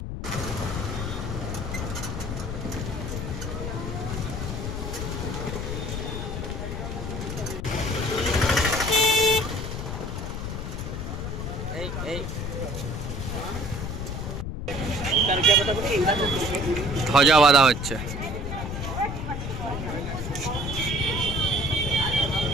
ধ্বজা বাঁধা হচ্ছে।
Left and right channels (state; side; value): noise; left; rumble, 5 dB below the sound